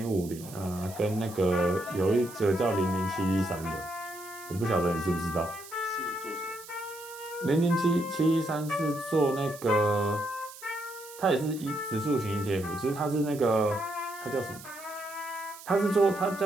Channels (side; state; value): right; noise; hiss, 17 dB below the sound